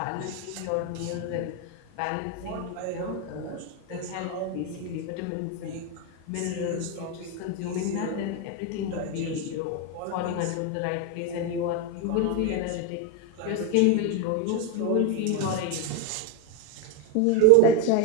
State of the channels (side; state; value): both; different; correlation 0.02